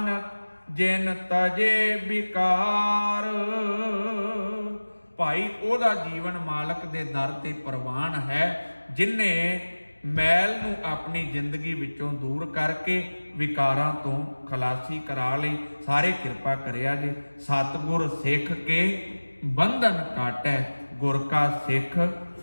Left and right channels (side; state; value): both; inverted; correlation -1.00